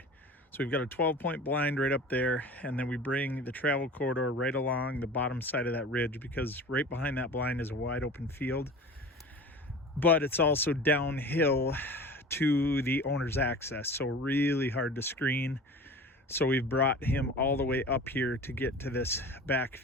So we've got a 12-point blind right up there, and then we bring the travel corridor right along the bottom side of that ridge, because right behind that blind is a wide open field, but it's also downhill to the owner's access, so really hard to screen. So we've brought him all the way up here to get to this back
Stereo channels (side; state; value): both; normal; correlation 0.38